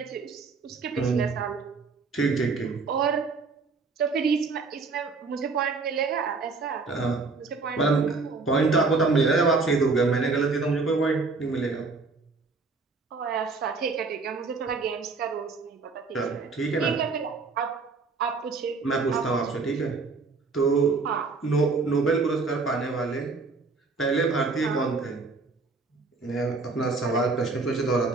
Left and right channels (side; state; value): left; quieter; 4.1 dB